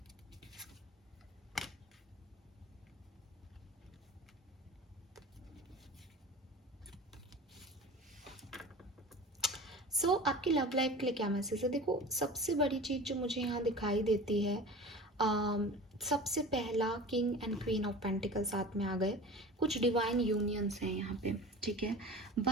सो आपकी love life के लिए क्या message है? देखो, सबसे बड़ी चीज़ जो मुझे यहाँ दिखाई देती है, सबसे पहला king and queen of pentacle साथ में आ गए, कुछ डिवाइन यूनियंस हैं यहाँ पे, ठीक है।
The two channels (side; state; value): both; normal; correlation 0.36